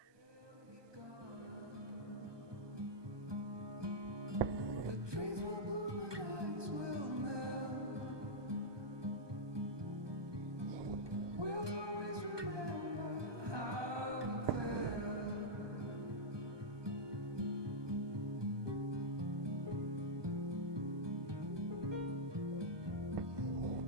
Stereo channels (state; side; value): late; left; 1.2 ms